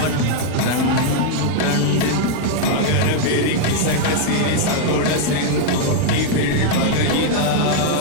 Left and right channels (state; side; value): different; both; correlation 0.00